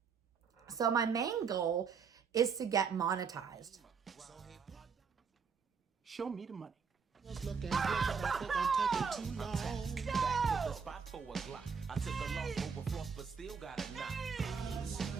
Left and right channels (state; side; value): quieter; left; 5.9 dB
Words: So my main goal is to get monetized. Show me the money.